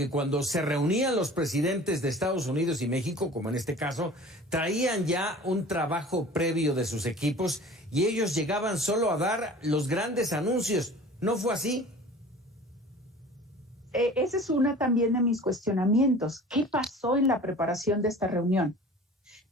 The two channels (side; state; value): both; normal; correlation 0.43